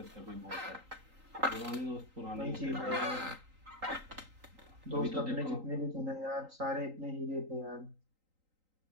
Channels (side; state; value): left; late; 3.8 ms